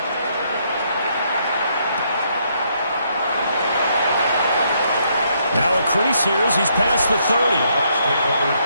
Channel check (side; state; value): both; inverted; correlation -0.73